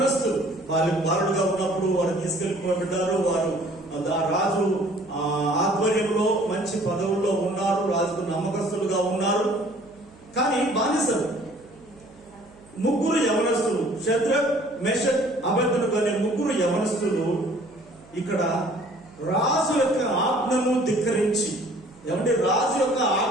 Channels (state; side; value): noise; right; hum, 25 dB below the sound